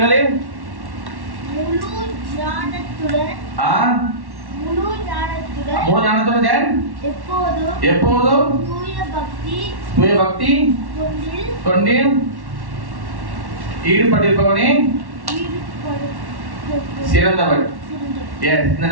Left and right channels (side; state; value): left; late; 1.1 ms